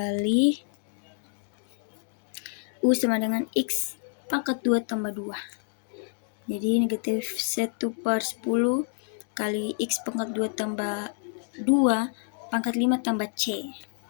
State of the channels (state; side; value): silent; right; 59 dB below the other